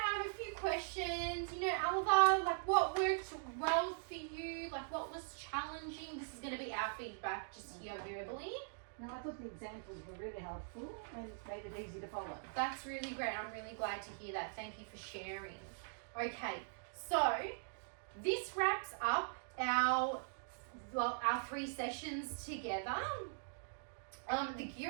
have a few questions. You know, Alva, like what worked well for you? Like what was challenging? This is going to be our feedback just here verbally. No, I thought the examples were really helpful and made it easy to follow. That's really great. I'm really glad to hear that. Thank you for sharing. Okay, so this wraps up our 3 sessions together. The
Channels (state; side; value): silent; left; digital silence